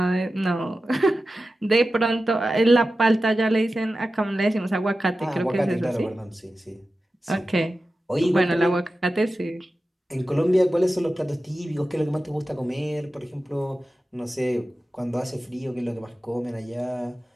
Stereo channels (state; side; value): normal; both; correlation 0.93